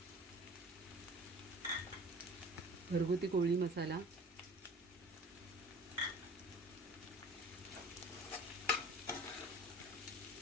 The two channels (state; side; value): normal; both; correlation 0.44